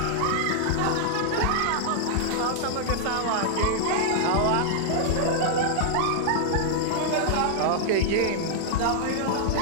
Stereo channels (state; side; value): different; both; correlation -0.01